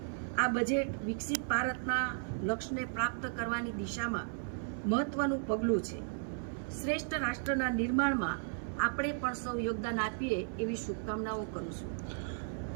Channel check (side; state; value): left; silent; 54 dB below the other